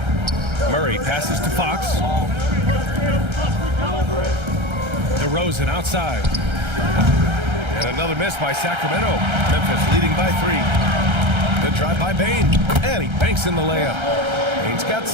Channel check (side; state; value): left; late; 1.3 ms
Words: Murray passes to Fox. DeRozan outside. And another miss by Sacramento. Memphis leading by 3. Good drive by Bane. And he banks in the layup. Bane's got